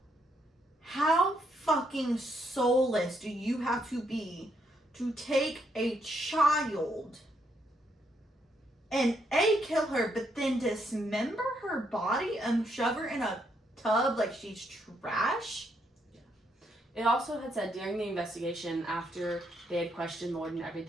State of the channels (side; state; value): both; normal; correlation 0.75